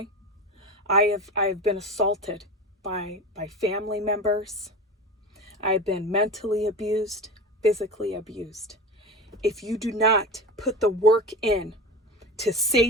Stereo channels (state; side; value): normal; both; correlation 0.29